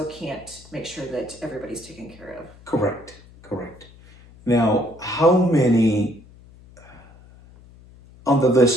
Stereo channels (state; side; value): noise; left; hum, 23 dB below the sound